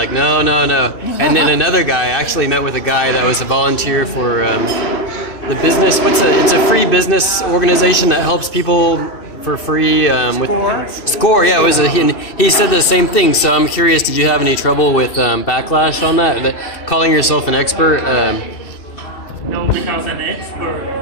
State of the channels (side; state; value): right; late; 2.6 ms